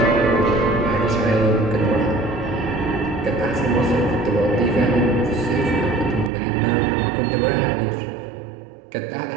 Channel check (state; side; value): drops out; left; at 6.3 s